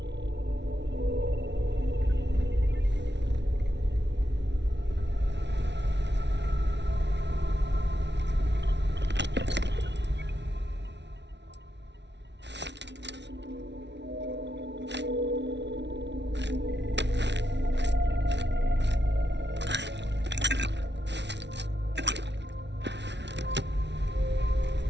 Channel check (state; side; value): late; left; 0.51 ms